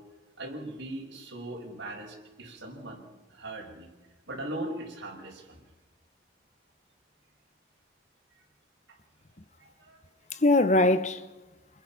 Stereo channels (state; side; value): normal; both; correlation 0.29